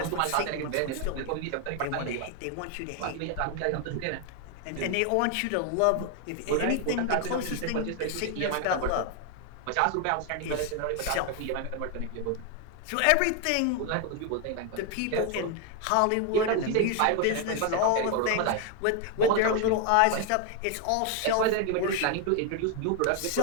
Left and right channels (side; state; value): both; different; correlation 0.01